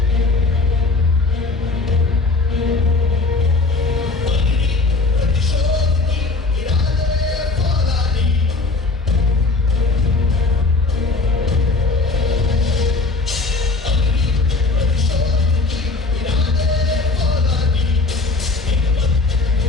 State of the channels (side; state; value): right; quieter; 3.7 dB